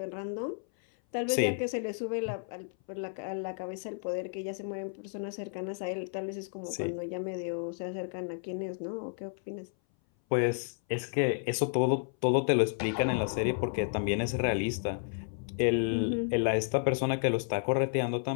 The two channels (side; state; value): right; silent; 57 dB below the other